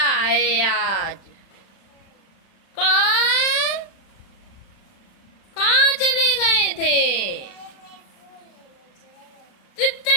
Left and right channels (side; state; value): right; late; 36 ms